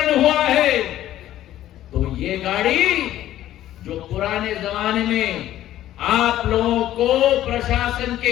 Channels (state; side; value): quieter; right; 13.2 dB